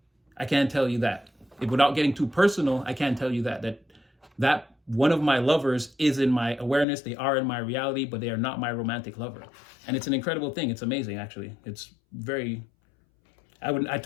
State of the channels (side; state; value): right; drops out; at 6.9 s